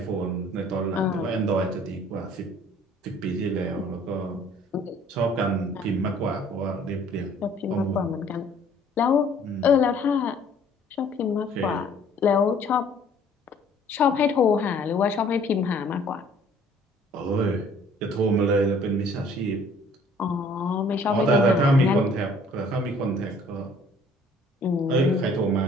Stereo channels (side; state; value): both; normal; correlation 0.56